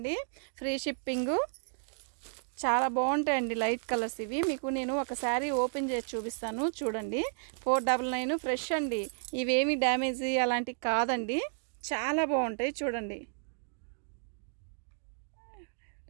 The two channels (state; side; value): silent; left; digital silence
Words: ఫ్రీ షిప్పింగు. చాలా బాగుంటాయండి లైట్ కలర్స్ ఇవి. మీకు నేను ఒక శారీ ఓపెన్ చేసి చూపిస్తాను, చూడండి. 499 ఫ్రెష్ అండి, ఇవేమి డ్యామేజ్ అలాంటివి కాదండి, చాలా బాగుంటాయి. చూడండి,